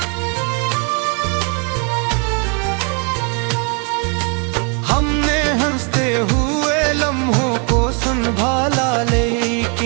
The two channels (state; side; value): quieter; left; 36.4 dB